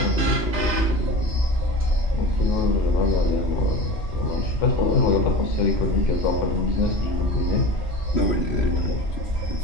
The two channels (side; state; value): right; late; 3.1 ms